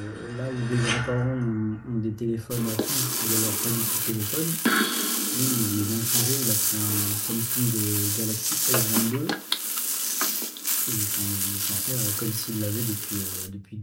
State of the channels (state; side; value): identical; both; correlation 1.00